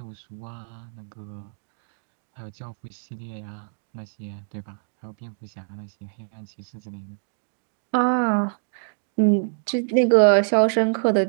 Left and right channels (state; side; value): silent; left; 61 dB below the other